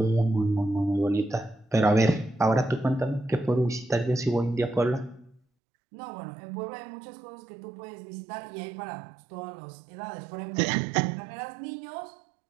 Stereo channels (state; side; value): drops out; left; at 5.4 s